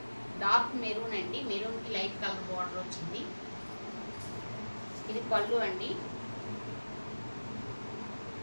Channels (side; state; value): both; inverted; correlation -1.00